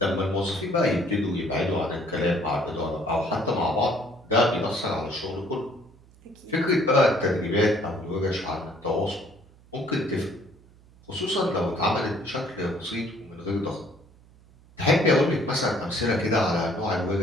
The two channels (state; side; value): noise; right; hum, 26 dB below the sound